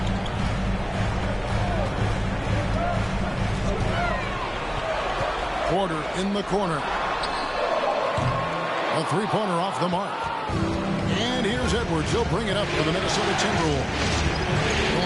Porter in the corner. A three-pointer off the mark. And here's Edwards. He'll bring it up for the Minnesota Timberwolves.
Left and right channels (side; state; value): both; identical; correlation 1.00